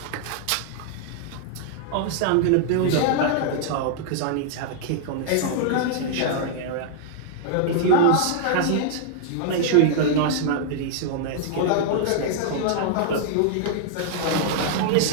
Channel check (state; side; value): different; both; correlation -0.01